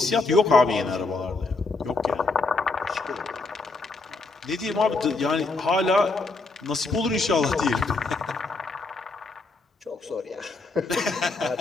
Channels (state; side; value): quieter; right; 3.6 dB